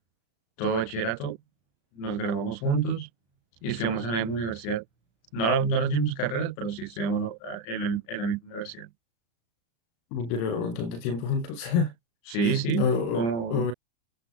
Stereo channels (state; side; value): late; right; 35 ms